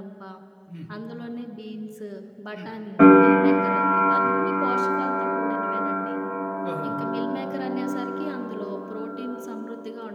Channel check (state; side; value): identical; both; correlation 1.00